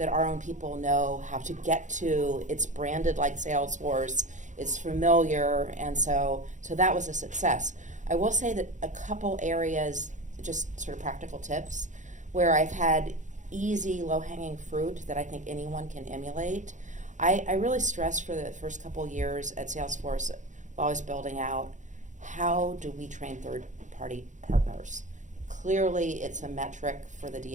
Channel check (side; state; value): left; late; 0.36 ms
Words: our own people know how to get to. It's branded like Salesforce. It's familiar, and so that was a success. I will say that a couple areas, just sort of practical tips, where I've had easy, low-hanging fruit that I think anyone can emulate. I really stressed for the first couple years at Salesforce while I was building out, how do we train third-party partners? Clearly, it's a metric for the